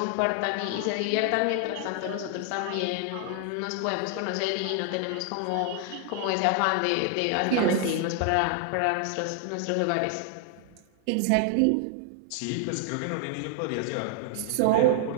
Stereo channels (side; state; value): both; different; correlation 0.00